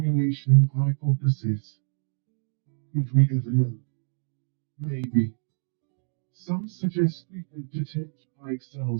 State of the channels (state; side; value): silent; left; digital silence